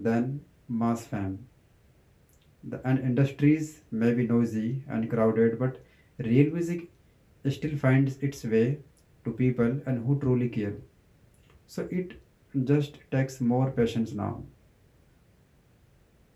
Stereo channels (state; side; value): identical; both; correlation 1.00